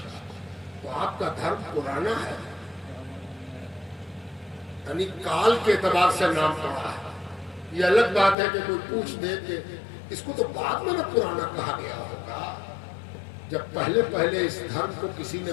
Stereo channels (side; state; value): right; drops out; at 8.3 s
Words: تو آپ کا دھرم پرانا ہے، یعنی کال کے اعتبار سے نام پڑا ہے۔ یہ الگ بات ہے کہ کوئی پوچھ دے کہ اس کو تو بعد میں نہ پرانا کہا گیا ہوگا، جب پہلے پہلے اس دھرم کو کسی نے